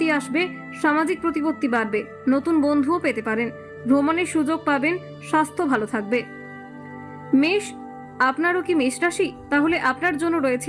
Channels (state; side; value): identical; both; correlation 1.00